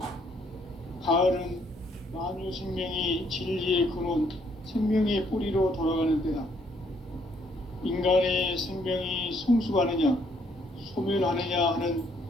가을은 만유 생명이 진리의 근원, 생명의 뿌리로 돌아가는 때다. 인간의 생명이 성숙하느냐, 소멸하느냐 하는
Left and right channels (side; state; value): both; normal; correlation 0.69